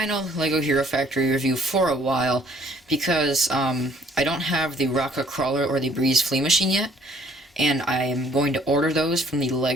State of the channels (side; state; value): both; normal; correlation 0.60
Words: LEGO Hero Factory review for a while, because I don't have the Rocka Crawler or the Breez Flea Machine yet, and I am going to order those from the